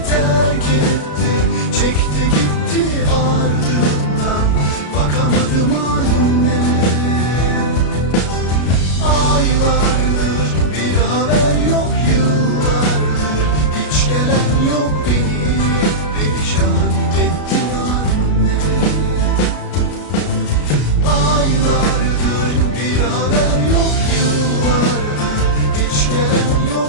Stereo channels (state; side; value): late; right; 33 ms